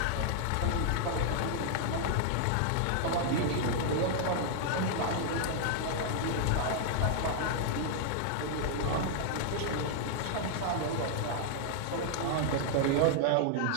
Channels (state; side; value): different; both; correlation 0.00